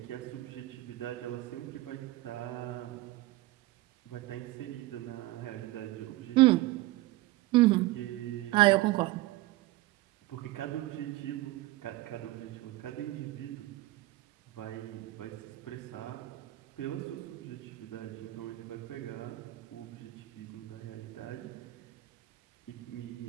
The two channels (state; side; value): quieter; left; 18.3 dB